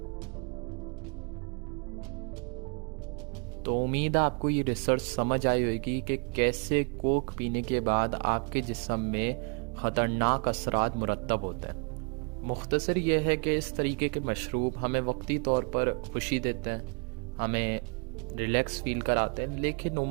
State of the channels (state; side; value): quieter; left; 35.6 dB